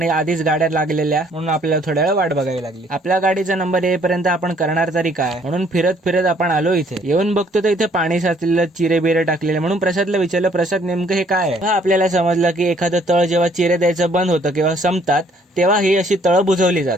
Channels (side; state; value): both; normal; correlation 0.62